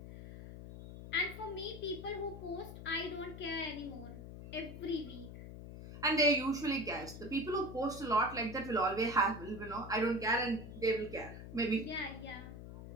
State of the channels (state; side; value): noise; left; hum, 11 dB below the sound